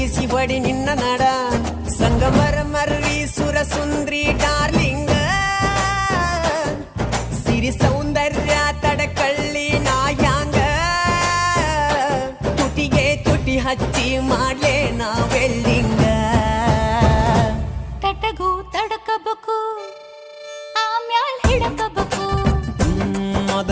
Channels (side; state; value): both; identical; correlation 1.00